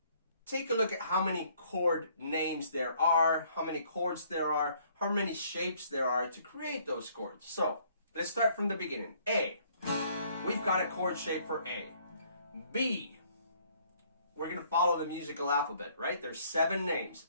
take a look at how many chord names there are, how many chords there are, how many shapes there are to create those chords. So let's start from the beginning. A. We've got a chord shape for A. B. We're going to follow the musical alphabet, right? There's 7 names.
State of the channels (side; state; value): both; inverted; correlation -0.62